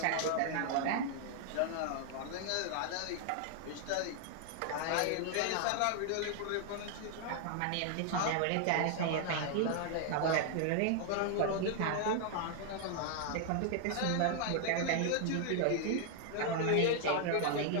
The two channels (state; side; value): different; both; correlation 0.00